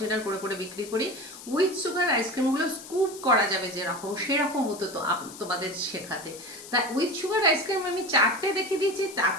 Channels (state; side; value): noise; left; hiss, 15 dB below the sound